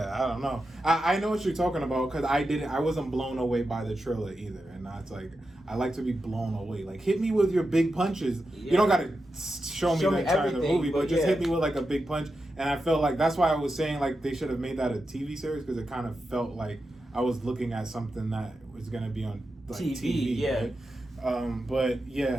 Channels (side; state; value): both; normal; correlation 0.89